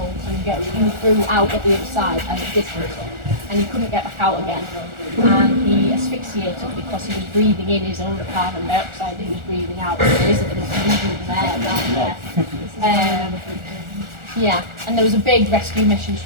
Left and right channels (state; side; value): late; left; 1.4 ms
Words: and get through out at the other side and it didn't. And he couldn't get back out again. And he asphyxiated because he was breathing in his own carbon dioxide he was breathing out. So there isn't enough movement there down there. Yeah, and there was a big rescue mission to